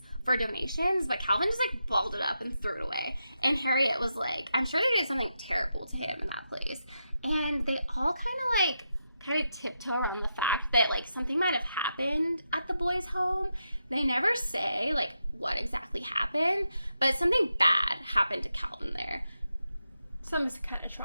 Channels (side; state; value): both; inverted; correlation -0.85